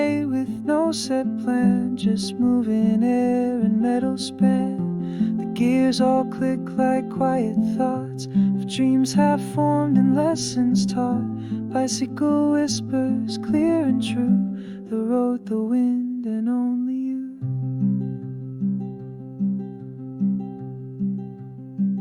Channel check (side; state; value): both; identical; correlation 1.00